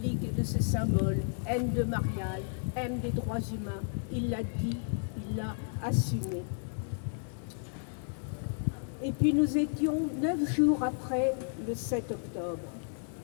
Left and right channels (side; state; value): right; silent; 56 dB below the other